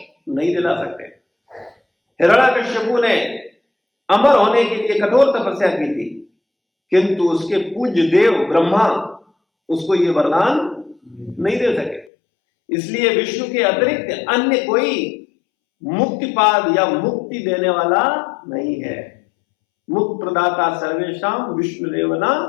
नहीं दिला सकते। हिरण्याकश्यपु ने अमर होने के लिए कठोर तपस्या की थी, किंतु उसके पूज्य देव ब्रह्मा उसको ये वरदान नहीं दे सके। इसलिए विष्णु के अतिरिक्त अन्य कोई मुक्तिपाद या मुक्ति देने वाला नहीं है। मुक्त प्रदाता सर्वेशाम विष्णुरेवना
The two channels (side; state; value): right; drops out; at 12.1 s